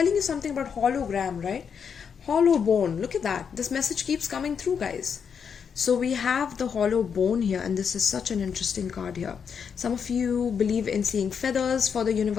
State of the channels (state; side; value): quieter; right; 6.9 dB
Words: you something about hologram, right? Hollow bone. Look at that. This message keeps coming through, guys. So we have the hollow bone here, and this is such an interesting card here. Some of you believe in seeing feathers for the